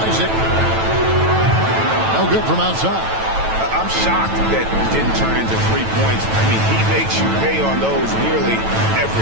Isaac. No good from outside. I'm shocked that didn't turn into 3 points. I mean, he makes you pay on those nearly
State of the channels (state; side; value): late; left; 9.1 ms